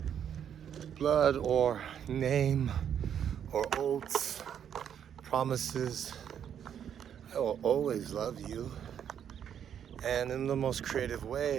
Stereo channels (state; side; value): quieter; left; 8.8 dB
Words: blood or name or oaths, promises, I will always love you. And in the most creative